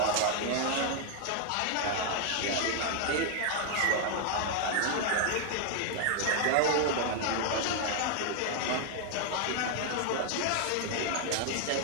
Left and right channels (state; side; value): different; both; correlation 0.00